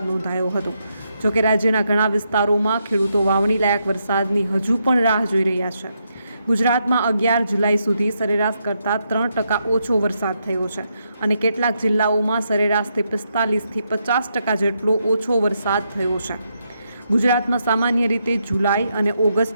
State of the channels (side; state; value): both; inverted; correlation -0.80